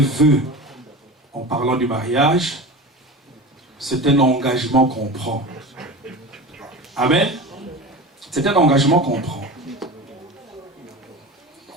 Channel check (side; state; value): both; normal; correlation 0.31